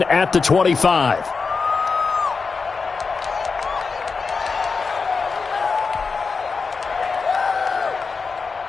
at the 25.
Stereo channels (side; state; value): right; quieter; 4.8 dB